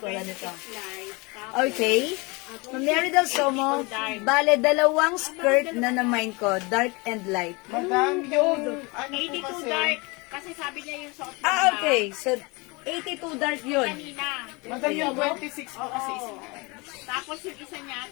nito. Okay? Mary Del Somo, bale, dalawang skirt na na-mine ko, dark and light. Madam, yung ano 82 po kasi. dark. Kasi sabi niya yung suot mo Okay. So, 82 dark yun. kanina. Madam, yung 26 po kasi isa. Tapos yung isa niya,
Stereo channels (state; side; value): quieter; right; 27.0 dB